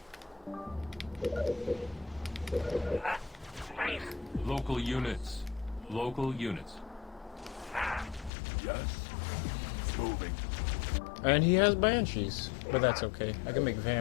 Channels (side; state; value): right; drops out; at 8.3 s